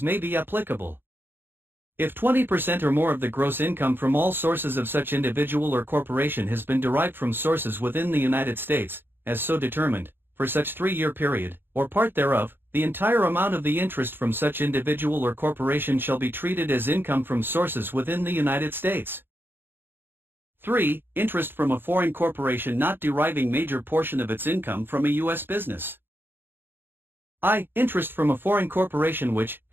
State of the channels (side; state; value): left; late; 0.10 ms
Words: may be applicable. If 20% or more of the gross income from all sources of such individual or corporation has been derived from sources within the United States, as so determined, for such 3-year period, or part thereof, the entire amount of the interest from such individual or corporation shall be treated as income from sources within the United States. 3. Interest from a foreign corporation not deriving major portion of its income from a U.S. business. I. Interest from a foreign corporation which,